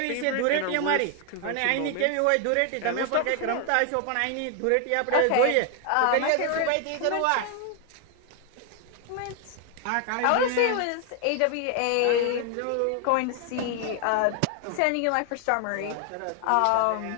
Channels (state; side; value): different; both; correlation 0.00